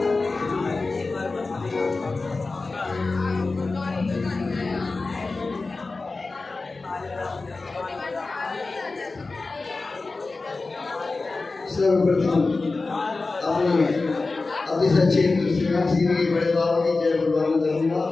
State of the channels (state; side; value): quieter; right; 3.7 dB